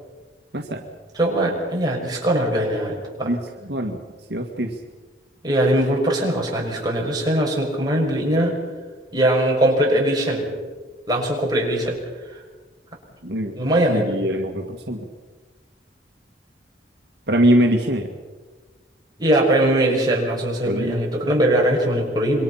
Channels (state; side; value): normal; both; correlation 0.53